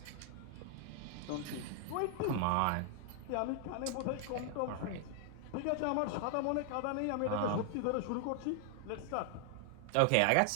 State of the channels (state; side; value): different; both; correlation 0.00